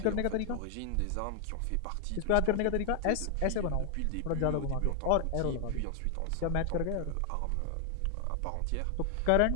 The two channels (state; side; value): different; both; correlation 0.00